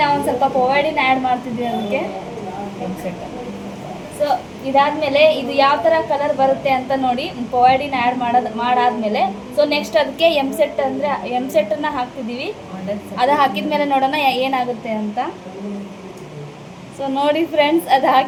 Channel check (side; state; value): both; identical; correlation 1.00